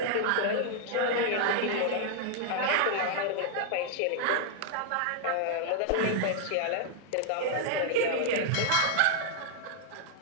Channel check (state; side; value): different; both; correlation -0.01